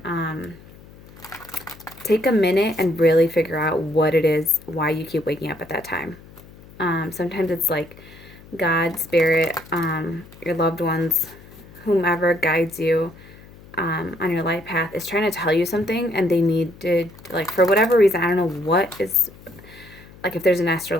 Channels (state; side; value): noise; left; hum, 21 dB below the sound